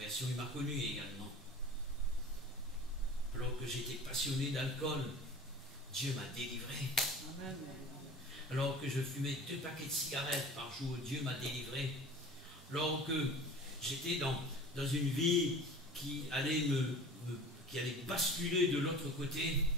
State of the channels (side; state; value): both; normal; correlation 0.40